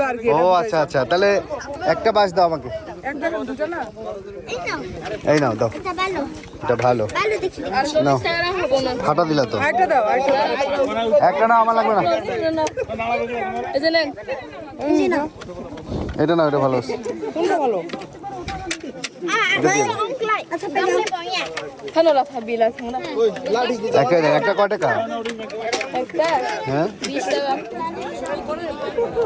আর কি। ও আচ্ছা আচ্ছা, তাহলে একটা বাস দাও আমাকে। এক জায়গা দুটো না। এই নাও, এই নাও, দাও। এটা ভালো এটা ভালো। ভালো দেখি। নাও, ফাটা দিলা তো। আরেকটা দাও, আরেকটা দাও। একটা না, আমার লাগবে না। এই যে নেন। এই যে নাও। এটা না, এটা ভালো। কোনটা ভালো? আচ্ছা পেলে পয়া খানোলা থাবিলা খানোলা একটা কয় টাকা একটা হ্যাঁ 20 টাকা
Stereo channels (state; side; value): identical; both; correlation 1.00